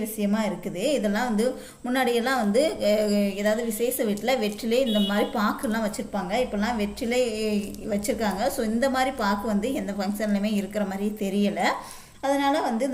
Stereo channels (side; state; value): both; identical; correlation 1.00